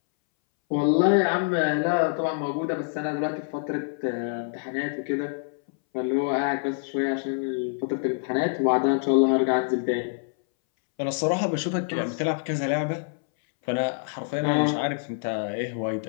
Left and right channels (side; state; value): right; silent; 61 dB below the other